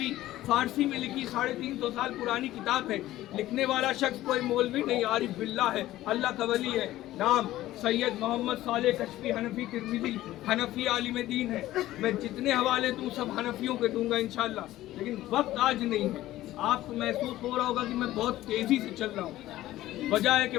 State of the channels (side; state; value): right; quieter; 15.2 dB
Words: फारसी में लिखी, 350 साल पुरानी किताब है। लिखने वाला शख्स कोई मौलवी नहीं, आरिफ बिल्ला है, अल्लाह का वली है। नाम सैयद मोहम्मद साले कश्फी हनफी तिरमिज़ी, हनफी आलिम दीन है। मैं जितने हवाले दूँ सब हनफियों के दूंगा इंशाल्लाह, लेकिन वक्त आज नहीं है। आपको महसूस हो रहा होगा कि मैं बहुत तेज़ी से चल रहा हूँ, वजह है कि